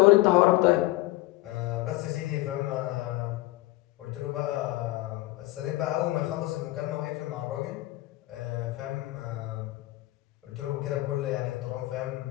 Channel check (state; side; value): quieter; right; 18.8 dB